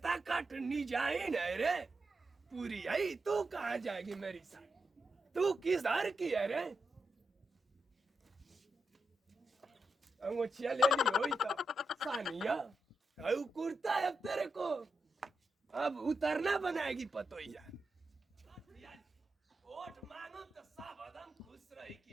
कट निजाइन है रे पूरी आई तू कहाँ जाएगी मेरी साथ तू किस हर की है रे अंगोछिया ले ली हुई तो सानिया कुर्ता है अब तेरे को अब उतरना बनाएगी पतोइया वोट मांगो तो सब एकदम खुश रही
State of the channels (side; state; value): both; normal; correlation 0.86